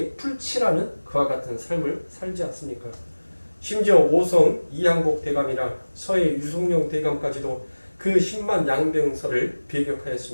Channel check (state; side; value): inverted; both; correlation -1.00